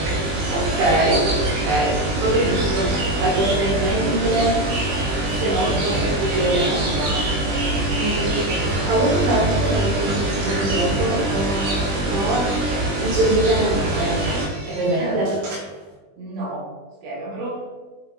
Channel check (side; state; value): left; late; 20 ms